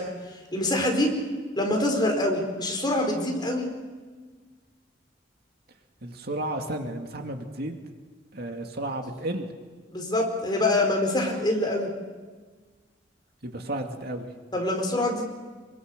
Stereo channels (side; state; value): both; normal; correlation 0.34